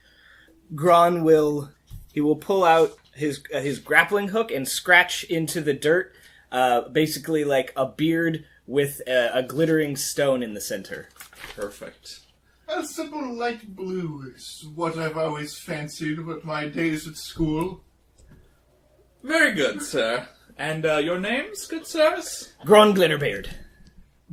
Gron will pull out his grappling hook and scratch into the dirt, basically like a beard with a glittering stone in the center. Perfect. A simple light blue is what I've always fancied with my days at school. Very good, sir. And your names, good sirs? Gron Glitterbeard.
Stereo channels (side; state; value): both; identical; correlation 1.00